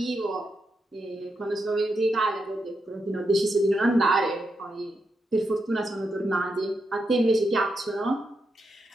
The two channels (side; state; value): both; normal; correlation 0.84